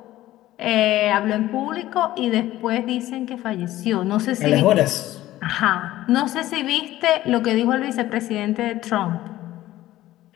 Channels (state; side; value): quieter; right; 15.2 dB